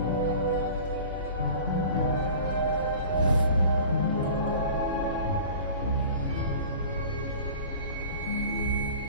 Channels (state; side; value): inverted; both; correlation -0.42